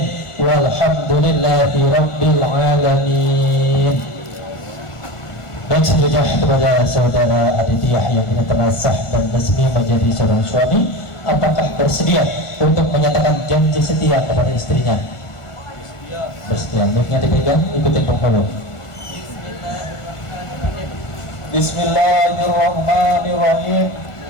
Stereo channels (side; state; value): right; late; 1.5 ms